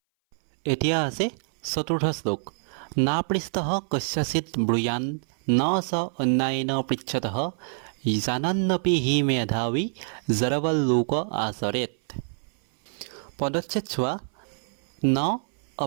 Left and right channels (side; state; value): left; silent; 59 dB below the other